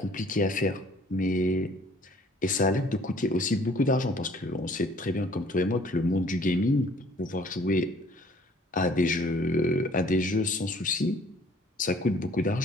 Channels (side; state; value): both; normal; correlation 0.56